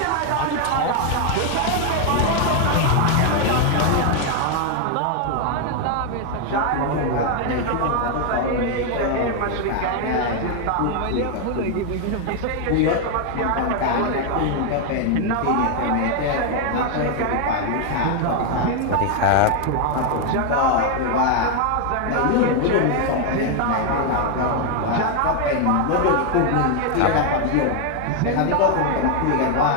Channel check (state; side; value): different; both; correlation 0.01